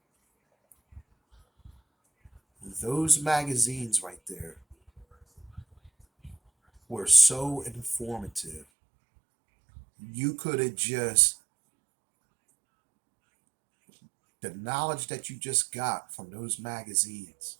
Those magazines right there were so informative. You could have just, the knowledge that you just got from those magazines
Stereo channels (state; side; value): drops out; left; at 8.7 s